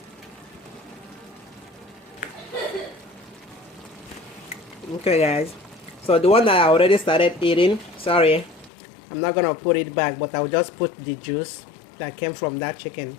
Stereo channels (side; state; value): right; drops out; at 8.7 s